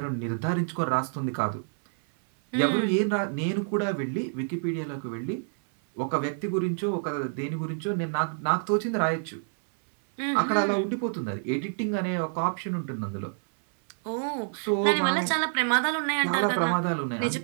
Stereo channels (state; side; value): silent; left; 60 dB below the other